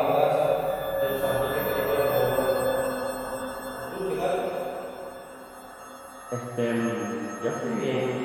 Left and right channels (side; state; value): both; identical; correlation 1.00